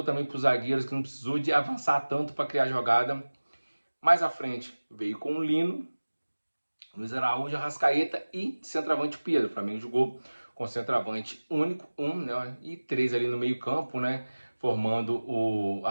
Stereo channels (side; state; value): both; inverted; correlation -1.00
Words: também para os zagueiros que não precisou de avançar tanto para criar jogada. Mais à frente veio com o Lino, Luiz Araújo, Arrascaeta e centroavante Pedro. O Flamengo jogou com centroavante único, né, e 3 ali no meio campo, né, formando o